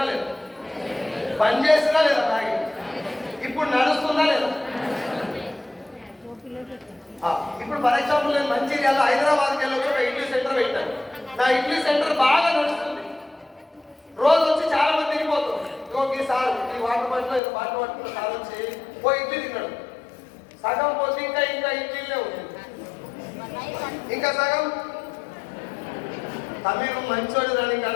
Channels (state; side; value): drops out; right; at 17.4 s